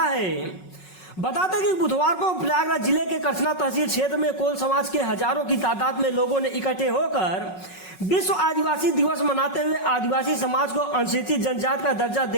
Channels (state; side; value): late; right; 5.4 ms